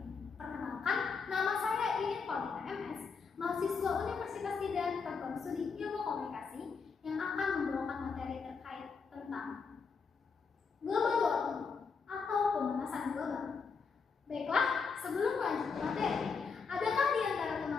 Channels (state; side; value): quieter; right; 5.3 dB